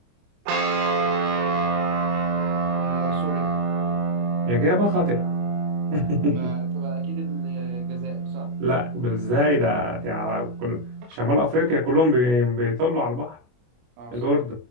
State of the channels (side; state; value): left; late; 25 ms